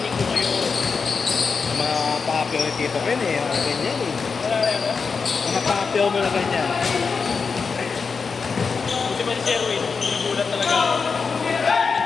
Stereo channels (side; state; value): right; quieter; 5.2 dB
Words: ko kayo. Mga papel ni Tito Ken eh, mga ganyan eh. Wala na. Mga papel mo na ganyan. Kasi ba si Sherwin, nagulat talaga ako.